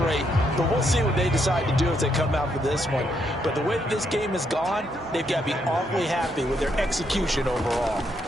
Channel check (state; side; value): normal; both; correlation 0.76